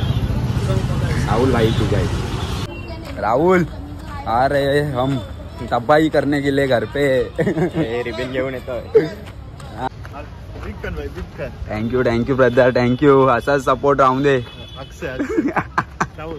राहुल भाई तू काय राहुल अरे हम तब्बाही करने के लिए घर पे रिबिन घेऊन येतोय. Thank you brother thank you. असाच सपोर्ट राहून दे.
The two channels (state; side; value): identical; both; correlation 1.00